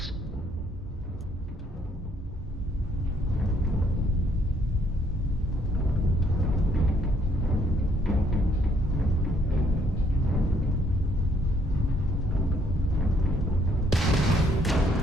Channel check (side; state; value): both; normal; correlation 0.67